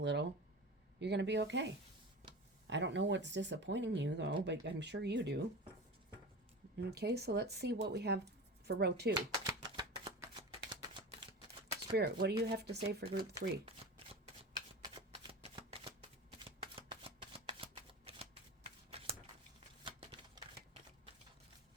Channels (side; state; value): both; normal; correlation 0.30